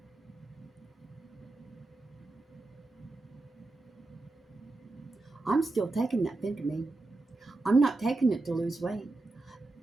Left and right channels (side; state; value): left; quieter; 3.1 dB